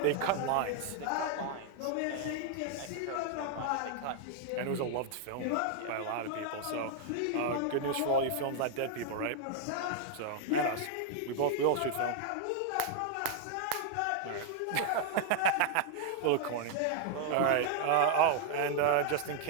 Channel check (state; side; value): different; both; correlation 0.00